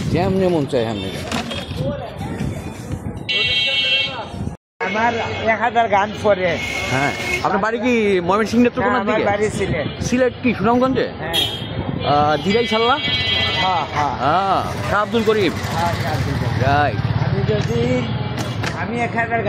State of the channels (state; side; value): identical; both; correlation 1.00